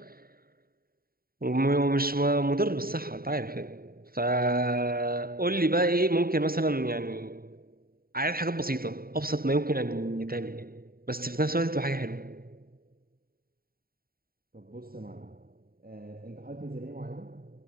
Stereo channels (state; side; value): late; left; 0.43 ms